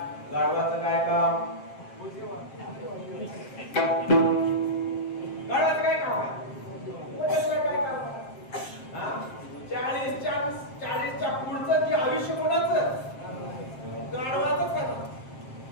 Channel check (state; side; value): late; right; 7.6 ms